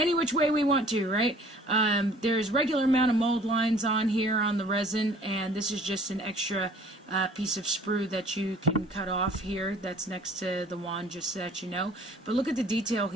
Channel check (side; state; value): both; normal; correlation 0.52